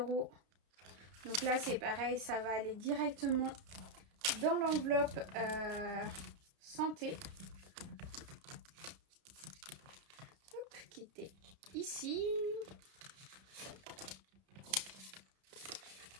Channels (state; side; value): late; left; 31 ms